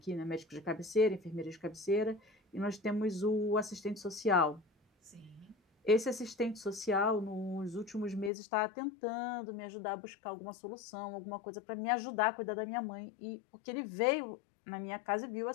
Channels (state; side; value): drops out; right; at 8.3 s